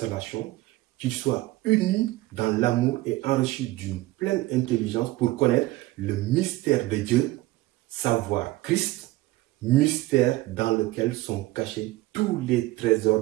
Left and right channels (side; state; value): left; quieter; 18.6 dB